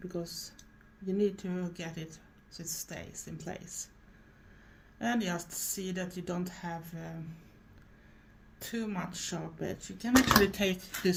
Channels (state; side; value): identical; both; correlation 1.00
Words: because you need to get it so it stays in place. And just see that you don't have too much sharp edge. You can actually take